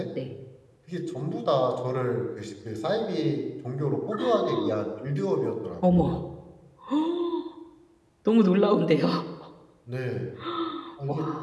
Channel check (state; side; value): identical; both; correlation 1.00